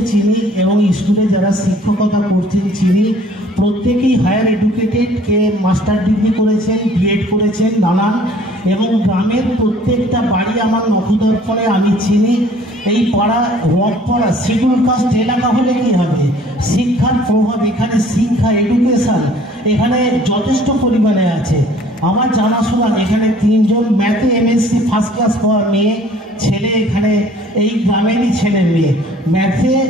চিনি এবং স্কুলে যারা শিক্ষকতা করছেন চিনি। প্রত্যেকেই হায়ার এডুকেটেড, কে মাস্টার ডিগ্রি করেছেন, বিএড করেছেন নানান, এবং গ্রামের প্রত্যেকটা বাড়ি আমার নখদর্পণে আমি চিনি। এই পাড়া রথপাড়া শিডিউল কাস্ট এলাকা হলে কী হবে, শিক্ষার প্রভাব এখানে, শিক্ষা এডুকেশান এখানে যথেষ্ট পরিমাণে আছে। আমার জানাশোনা এখানে 3 জন ম্যাথে এমএসসি ফার্স্ট ক্লাস পাওয়া মেয়ে ছেলে, এখানে এই গ্রামেরই ছেলে মেয়ে ম্যাথে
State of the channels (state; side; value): normal; both; correlation 0.54